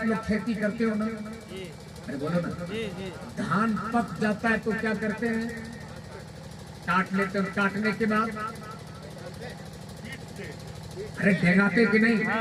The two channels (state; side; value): identical; both; correlation 1.00